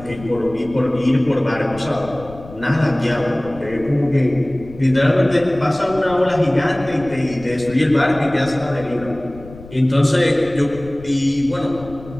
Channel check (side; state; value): left; noise; rumble, 17 dB below the sound